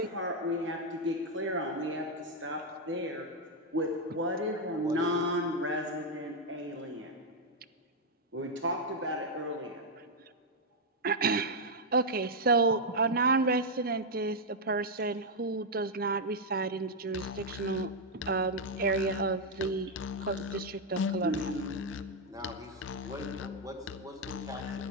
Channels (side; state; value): both; normal; correlation 0.00